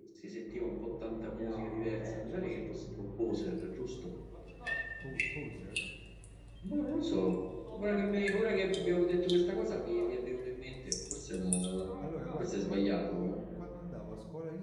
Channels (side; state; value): both; identical; correlation 1.00